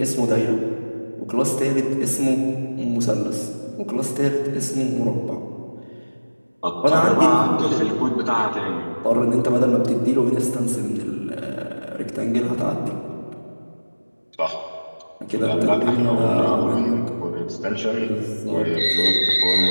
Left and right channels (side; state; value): both; inverted; correlation -1.00